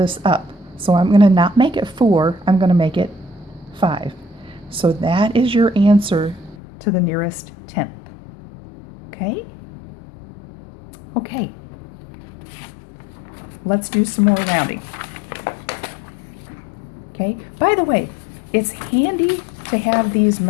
up. So I'm going to not make it 4, I'm going to make it 5. So that is your answer to the nearest tenth. Okay? Okay. Let's do some more rounding. Okay? By the way, it's handy to have these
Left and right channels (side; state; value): right; drops out; at 6.6 s